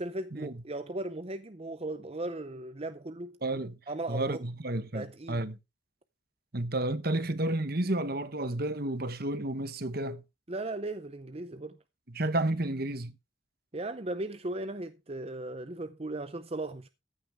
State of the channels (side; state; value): both; normal; correlation 0.43